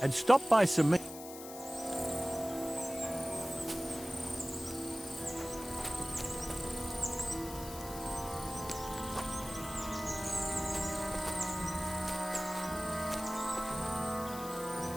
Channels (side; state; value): left; noise; hiss, 12 dB below the sound